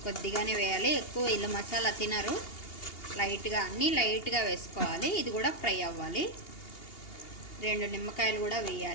కొద్దిగానే వేయాలి, ఎక్కువ ఇల్లు మసాలా తినరు, లైట్గా, అన్నీ లైట్గా వేసుకోవాలి. ఇది కూడా ఫ్రై అవ్వాలి. 2 నిమ్మకాయలు కూడా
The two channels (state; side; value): late; right; 2.8 ms